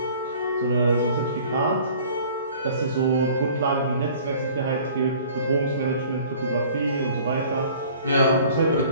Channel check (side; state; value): both; inverted; correlation -0.50